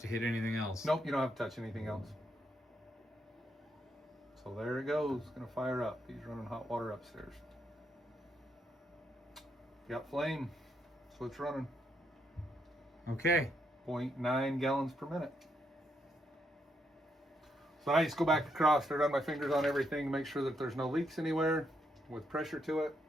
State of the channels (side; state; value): both; normal; correlation 0.78